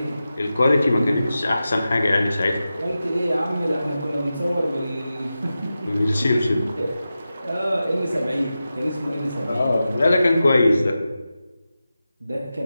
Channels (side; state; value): both; inverted; correlation -0.93